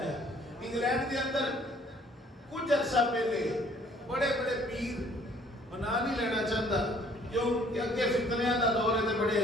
ہے. انگلینڈ کے اندر کچھ عرصہ پہلے بڑے بڑے پیر بنا نہیں لینا چاہتا کیوں کہ اگے فتنیاں دا دور ہے تے بڑے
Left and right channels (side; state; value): both; normal; correlation 0.59